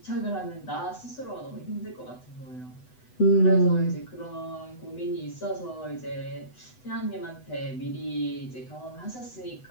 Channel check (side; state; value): right; late; 8.0 ms